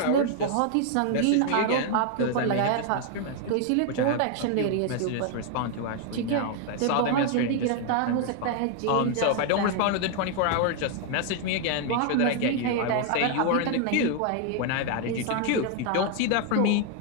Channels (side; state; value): both; different; correlation 0.00